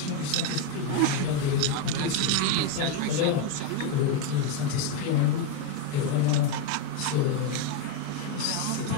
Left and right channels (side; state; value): both; different; correlation 0.02